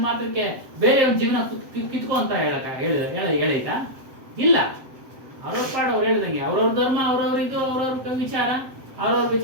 ಮಾತ್ರಕ್ಕೆ ಬೇರೆ ಒಂದು ಜೀವನ ಕಿತ್ಕೊ ಅಂತ ಹೇಳೈತಾ? ಇಲ್ಲ. ಅವ್ರವ್ರ ಪಾಡು ಅವ್ರು ಹೇಳ್ದಂಗೆ ಅವ್ರವ್ರ ಧರ್ಮ, ಅವ್ರವ್ರ ಇದು, ಅವ್ರವ್ರ ವಿಚಾರ, ಅವ್ರವ್ರ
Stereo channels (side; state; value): left; late; 7.7 ms